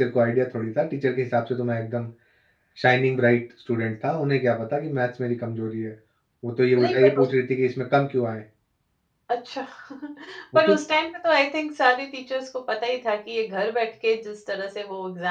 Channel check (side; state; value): both; identical; correlation 1.00